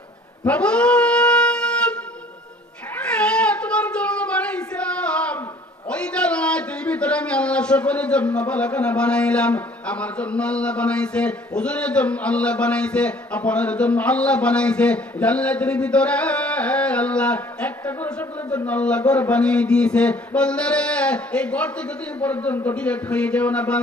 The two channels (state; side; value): normal; both; correlation 0.55